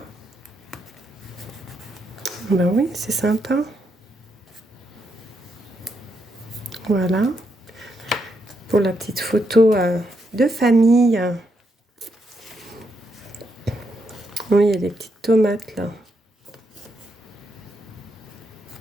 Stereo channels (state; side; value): normal; both; correlation 0.79